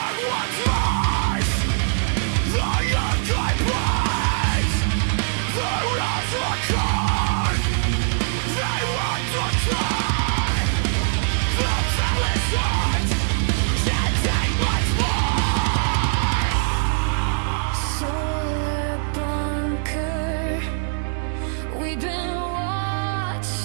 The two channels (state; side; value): silent; left; 64 dB below the other